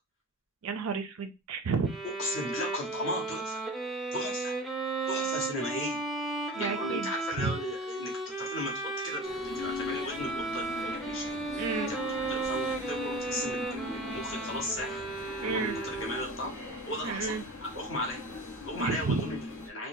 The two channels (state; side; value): normal; both; correlation 0.34